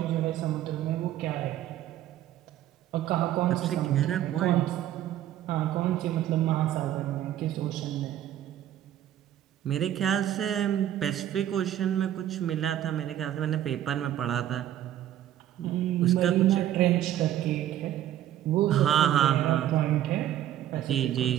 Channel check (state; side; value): quieter; left; 12.0 dB